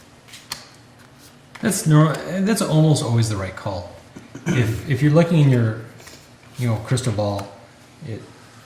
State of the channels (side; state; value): both; identical; correlation 1.00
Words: That's almost always the right call. If you're looking in your, crystal ball,